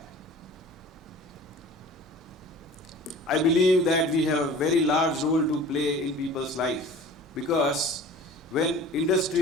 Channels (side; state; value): both; normal; correlation 0.44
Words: I believe that we have a very large role to play in people's life, because when